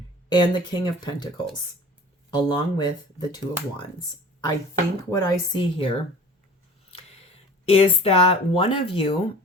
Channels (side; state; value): both; normal; correlation 0.43